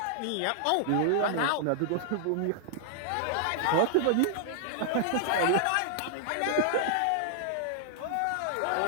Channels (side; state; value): both; different; correlation -0.01